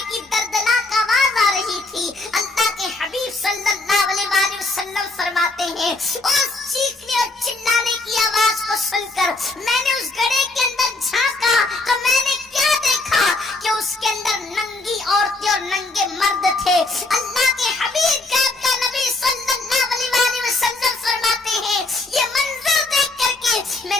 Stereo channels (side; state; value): right; quieter; 3.1 dB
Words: کی دردناک آواز آ رہی تھی۔ اللہ کے حبیب صلی اللہ علیہ وآلہ وسلم فرماتے ہیں اس چیخنے اور چلانے کی آواز کو سن کر میں نے اس گڑھے کے اندر جھانکا تو میں نے کیا دیکھا کہ اس کے اندر ننگی عورتیں اور ننگے مرد تھے۔ اللہ کے حبیب کا نبی صلی اللہ علیہ وآلہ وسلم فرماتے ہیں یہ منظر دیکھ کر کے میں